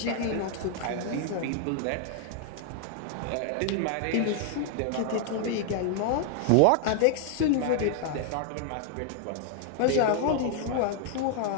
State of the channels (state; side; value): different; both; correlation 0.00